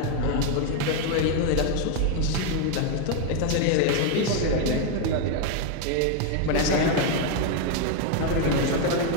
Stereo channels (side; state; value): both; different; correlation 0.01